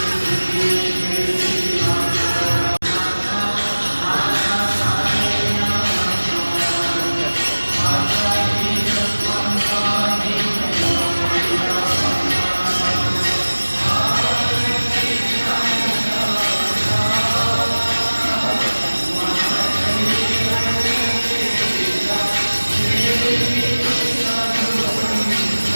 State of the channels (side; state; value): both; inverted; correlation -1.00